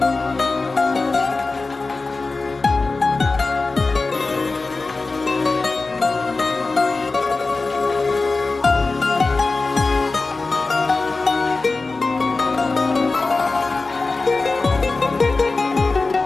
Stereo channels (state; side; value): quieter; right; 3.7 dB